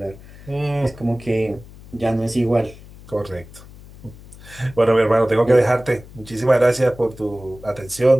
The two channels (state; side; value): noise; left; hum, 20 dB below the sound